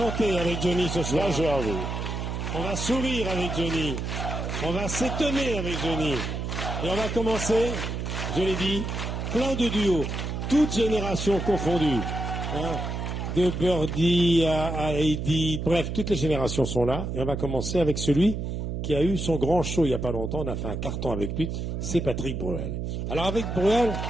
avec Johnny ce soir. Là, j'ai envie. On va sourire avec Johnny. On va s'étonner avec Johnny. Et on va commencer, je l'ai dit, plein de duos, toutes générations confondues. Hein, de Birdie à Heidi, bref, toutes les générations sont là. Et on va commencer avec celui qui a eu son grand show il n'y a pas longtemps. On a fait un carton avec lui. C'est Patrick Bruel. Alors avec Bruel,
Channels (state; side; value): noise; right; hum, 4 dB below the sound